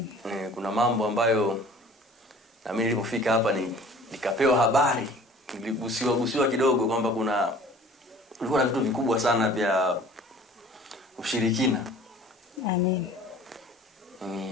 Kuna mambo ambayo na mimi nilipofika hapa nikapewa habari, niligusiwa kidogo kwamba kulikuwa na vitu vikubwa sana vya ushirikina.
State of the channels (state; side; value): normal; both; correlation 0.48